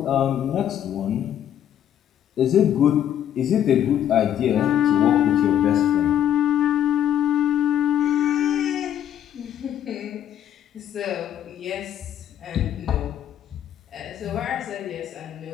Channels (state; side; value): quieter; right; 10.2 dB